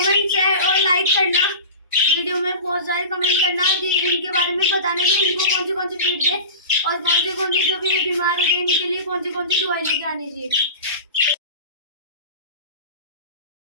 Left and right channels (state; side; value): inverted; both; correlation -0.32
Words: शेयर और लाइक करना, वीडियो में बहुत सारे कमेंट करना कि इनके बारे में बताना कि इनको कौन सी फीड दे और कौन से जो भी बीमार हो गए इनके लिए कौन सी दवाई लेके आनी चाहिए।